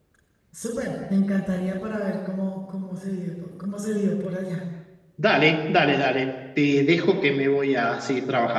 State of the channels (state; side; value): identical; both; correlation 1.00